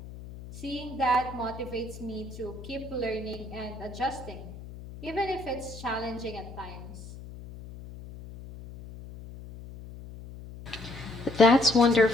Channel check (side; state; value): left; noise; hum, 14 dB below the sound